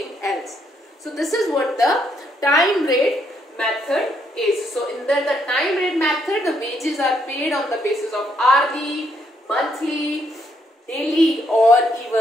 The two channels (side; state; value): both; normal; correlation 0.73